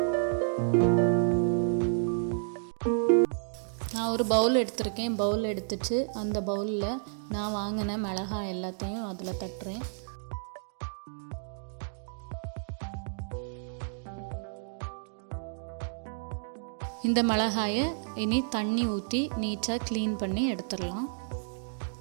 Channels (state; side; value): silent; left; digital silence